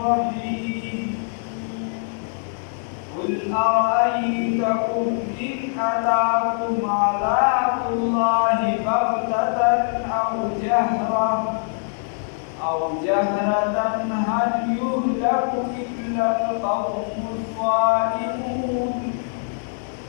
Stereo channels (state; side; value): silent; right; 63 dB below the other